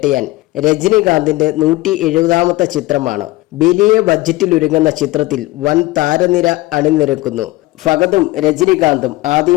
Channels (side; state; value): right; quieter; 19.1 dB